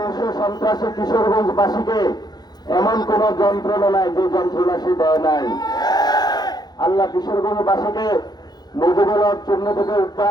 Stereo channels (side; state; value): right; late; 0.20 ms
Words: সন্ত্রাসী কিশোরগঞ্জবাসীকে এমন কোন যন্ত্রণা নাই যে যন্ত্রণা সে দেয় নাই। আল্লাহ কিশোরগঞ্জবাসীকে মুজিবুল হক চূর্ণ থেকে